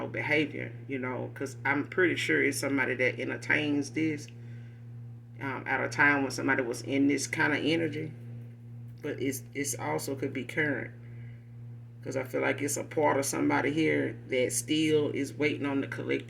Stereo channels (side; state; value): both; identical; correlation 1.00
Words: behavior, because I'm pretty sure it's somebody that entertains this at a time when somebody was in this kind of energy. But it's also could be current, because I feel like it's a part of somebody here that still is waiting on the